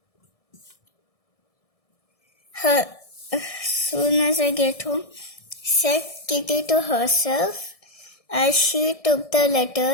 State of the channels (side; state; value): right; late; 1.6 ms